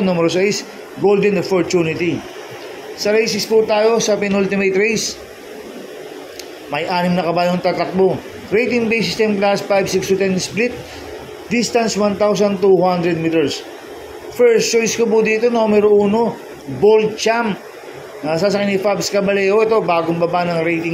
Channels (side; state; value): both; identical; correlation 1.00